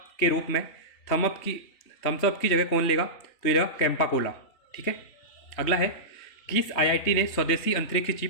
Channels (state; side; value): late; right; 3.3 ms